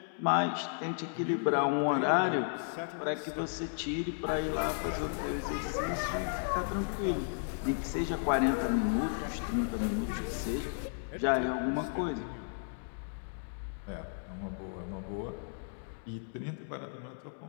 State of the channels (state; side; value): silent; right; digital silence